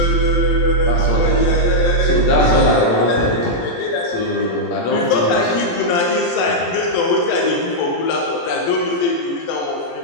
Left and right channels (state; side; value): late; right; 17 ms